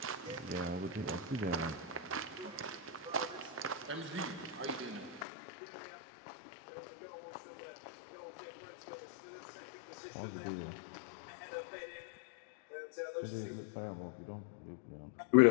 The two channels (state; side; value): drops out; right; at 5.2 s